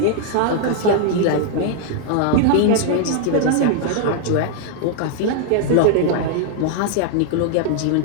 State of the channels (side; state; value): both; different; correlation 0.00